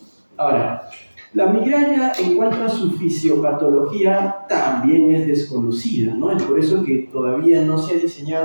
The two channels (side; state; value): both; inverted; correlation -1.00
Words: Ahora, la migraña, en cuanto a su fisiopatología, también es desconocida, ¿no? Es por eso que todavía no se ha